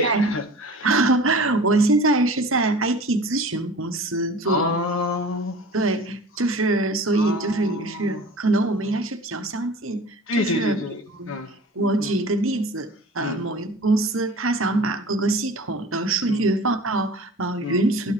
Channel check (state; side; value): normal; both; correlation 0.41